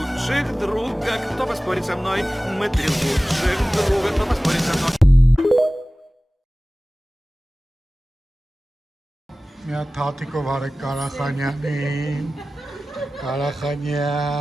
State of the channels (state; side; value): normal; both; correlation 0.97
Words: друга. Кто поспорит со мной? Мы три лучших друга. Кто поспорит со мной? Μια թաթիկով արեք Կարախանյանին,